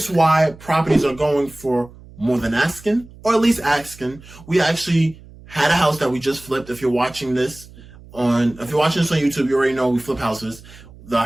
why properties are going for more than asking, or at least asking. We actually had a house that we just flipped. If you're watching this on YouTube, you already know we flip houses. The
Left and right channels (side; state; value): right; noise; hum, 21 dB below the sound